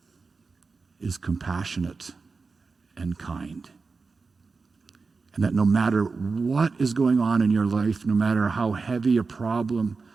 is compassionate and kind. And that no matter what is going on in your life, no matter how heavy a problem,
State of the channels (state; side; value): quieter; left; 4.4 dB